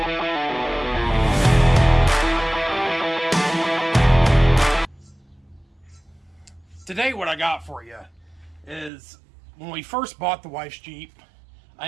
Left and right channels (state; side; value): drops out; left; at 8.9 s